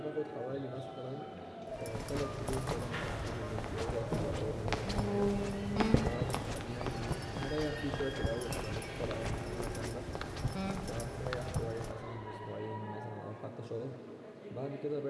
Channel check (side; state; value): both; identical; correlation 1.00